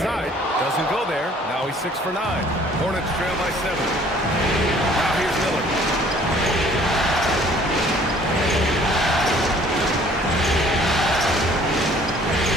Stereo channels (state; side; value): normal; both; correlation 0.56